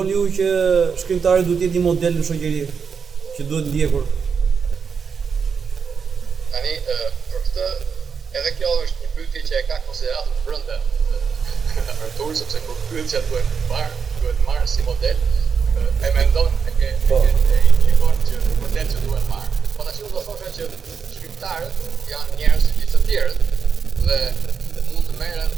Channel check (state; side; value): quieter; left; 6.1 dB